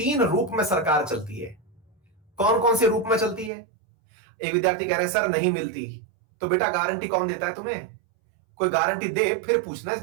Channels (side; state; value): left; drops out; at 3.5 s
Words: रूप में सरकार चलती है। कौन कौन से रूप में चलती है? एक विद्यार्थी कह रहे हैं सर नहीं मिलती, तो बेटा गारंटी कौन देता है तुम्हें? कोई गारंटी दे फिर पूछना इस